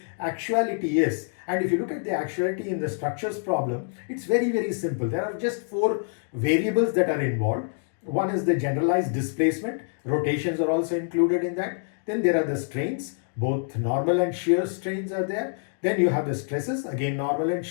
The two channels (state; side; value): silent; right; 61 dB below the other